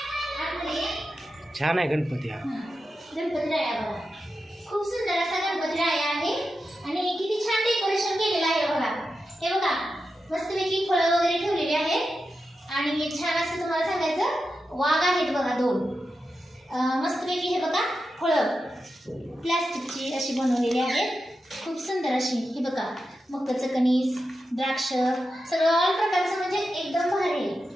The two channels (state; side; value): normal; both; correlation 0.90